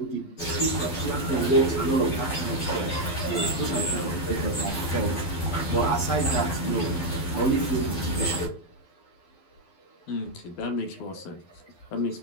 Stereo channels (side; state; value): right; late; 12 ms